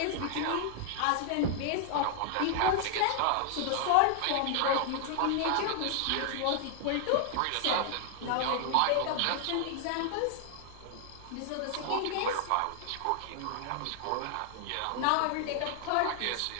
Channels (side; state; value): both; different; correlation 0.00